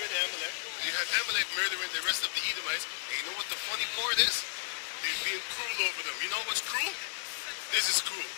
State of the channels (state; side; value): silent; right; digital silence